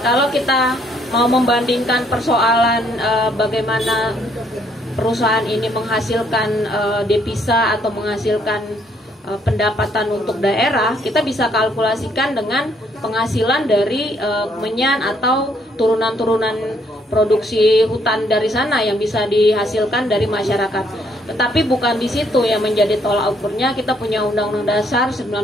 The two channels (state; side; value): normal; both; correlation 0.69